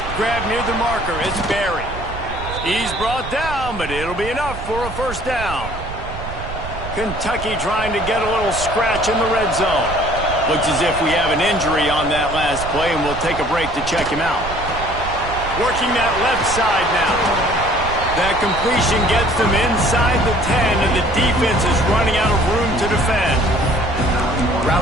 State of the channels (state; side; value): noise; right; rumble, 10 dB below the sound